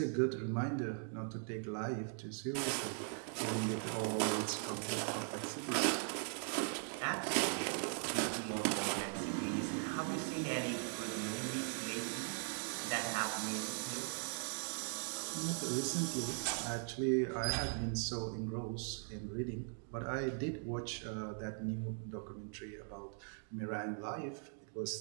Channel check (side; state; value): left; silent; 51 dB below the other